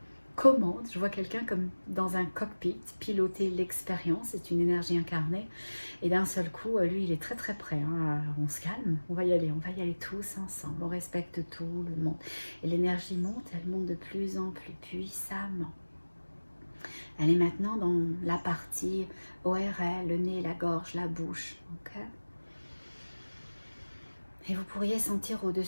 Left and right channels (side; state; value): both; inverted; correlation -1.00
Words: commandes. Je vois quelqu'un comme dans un cockpit piloter l'expérience. C'est une énergie incarnée. Et d'un seul coup, lui, il est très très prêt. Hein. On se calme, on va y aller tous ensemble. On respecte tout le monde. Et l'énergie monte, elle monte de plus en plus puissamment. Elle est maintenant dans la partie ORL, le nez, la gorge, la bouche. Okay, et vous pourriez sentir